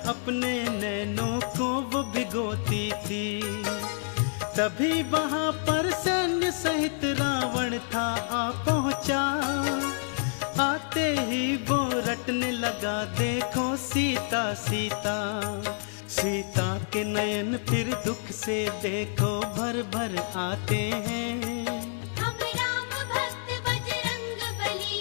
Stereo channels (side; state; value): right; silent; digital silence